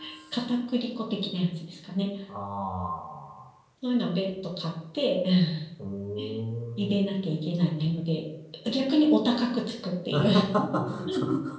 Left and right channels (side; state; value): both; identical; correlation 1.00